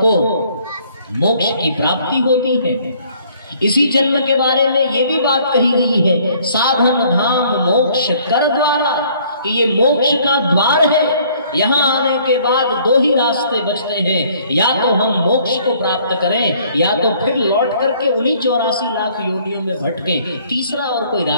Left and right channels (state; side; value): inverted; both; correlation -0.60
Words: मोक्ष की प्राप्ति होती है। इसी जन्म के बारे में ये भी बात कही गई है, साधन धाम मोक्ष कर द्वारा, कि ये मोक्ष का द्वार है। यहाँ आने के बाद दो ही रास्ते बचते हैं, या तो हम मोक्ष को प्राप्त करें या तो फिर लौट करके उन्हीं 84 लाख योनियों में भटकें। तीसरा और कोई